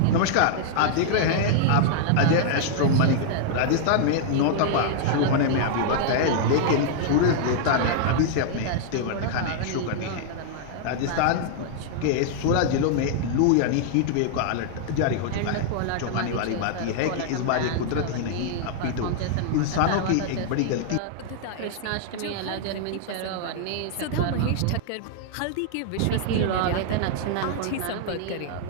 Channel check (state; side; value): different; both; correlation -0.01